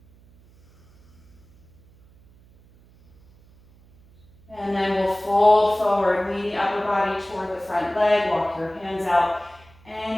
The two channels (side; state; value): right; noise; hum, 28 dB below the sound